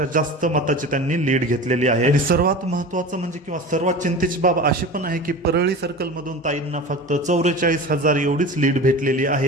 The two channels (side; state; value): both; normal; correlation 0.33